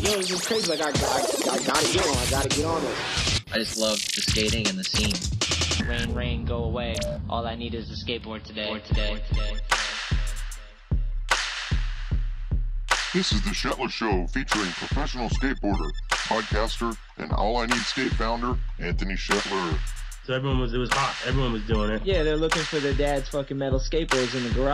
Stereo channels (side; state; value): both; identical; correlation 1.00